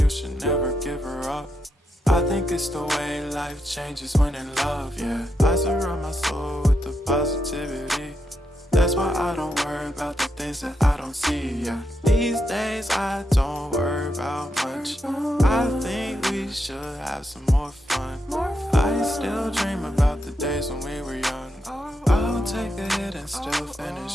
should never give her up. I think it's the way life changes when in love, yeah. I surround my soul with the positivity. That's why I don't worry about the things that I don't see, yeah. These days I don't worry about much. I think we should have some more fun. I still dream about the days when we were young. I'll take a hit and still finish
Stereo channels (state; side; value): normal; both; correlation 0.83